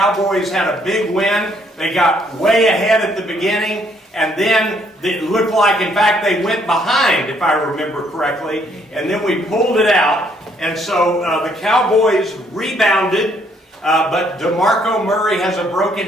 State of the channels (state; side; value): normal; both; correlation 0.68